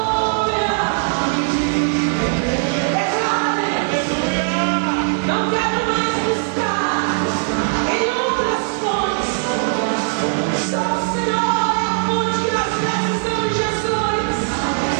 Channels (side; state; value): left; silent; digital silence